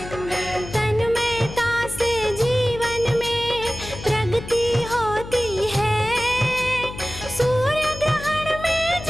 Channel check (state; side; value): noise; left; hum, 12 dB below the sound